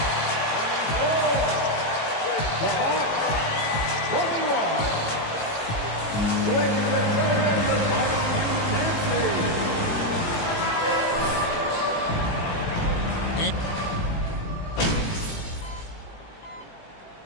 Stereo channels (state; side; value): late; right; 18 ms